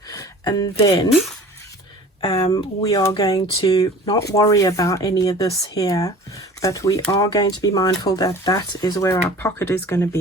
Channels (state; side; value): normal; both; correlation 0.43